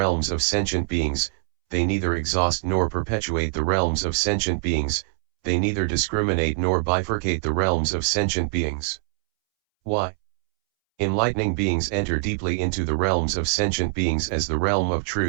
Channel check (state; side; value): silent; left; 63 dB below the other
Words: of sentient beings, they neither exhaust nor perpetuate the realms of sentient beings, they neither discriminate nor bifurcate the realms of sentient beings. Why? Enlightening beings enter deeply into the realms of sentient beings as the realm of